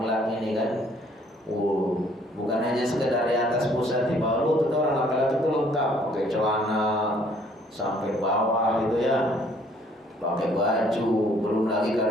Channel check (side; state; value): both; normal; correlation 0.61